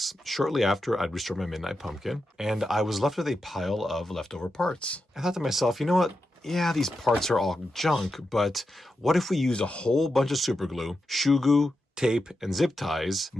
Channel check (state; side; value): normal; both; correlation 0.88